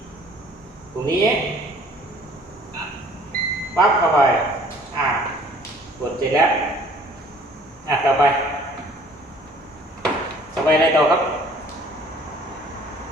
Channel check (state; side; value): normal; both; correlation 0.54